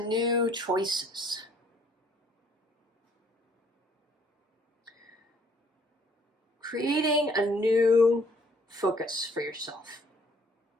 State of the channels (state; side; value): normal; both; correlation 0.62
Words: new choices. Creating a new focus for yourself.